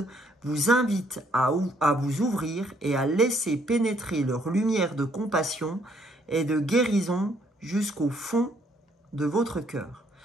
vous invitent à vous ouvrir et à laisser pénétrer leur lumière de compassion et de guérison jusqu'au fond de votre cœur.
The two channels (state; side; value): normal; both; correlation 0.67